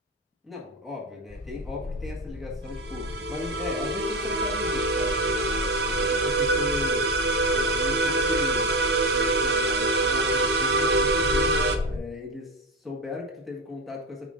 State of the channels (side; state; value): both; normal; correlation 0.18